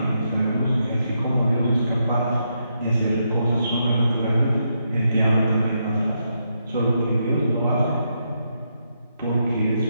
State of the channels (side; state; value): both; inverted; correlation -0.81